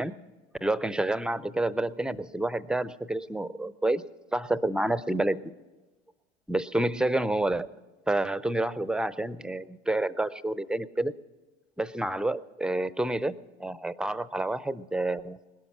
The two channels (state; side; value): normal; both; correlation 0.91